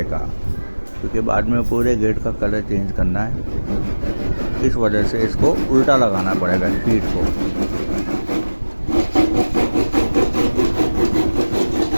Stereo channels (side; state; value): both; inverted; correlation -1.00